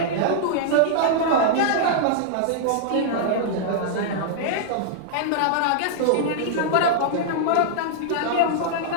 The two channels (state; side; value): different; both; correlation -0.02